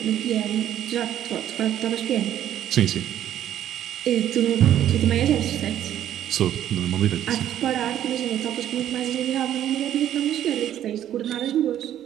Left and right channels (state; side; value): quieter; left; 11.3 dB